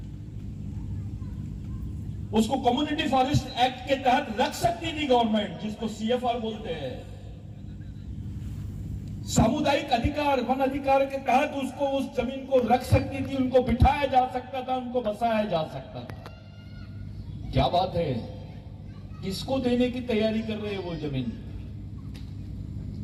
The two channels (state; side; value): identical; both; correlation 1.00